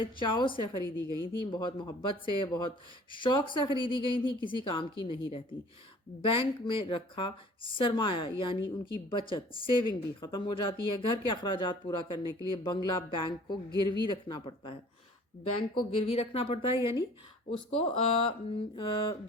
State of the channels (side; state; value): both; normal; correlation 0.50